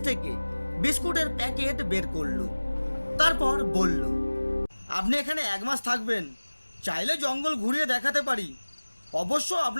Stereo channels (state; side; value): inverted; both; correlation -1.00